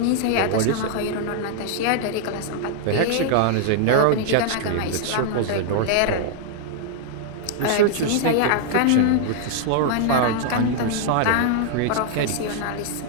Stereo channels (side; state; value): both; different; correlation -0.01